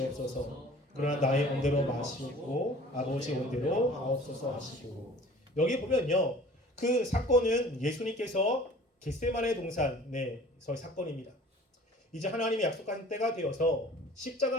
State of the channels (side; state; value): both; normal; correlation 0.47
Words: 그러나 나의 온대로 마시옵고 아버지 온대로 하옵소서 하시고. 여기 보면요. 그 사건은 예수님께서 겟세마네 동산에서의 사건입니다. 이제 하나님이 약속한 때가 되어서